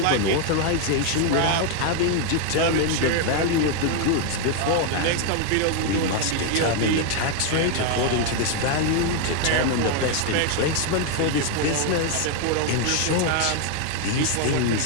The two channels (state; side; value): different; both; correlation 0.01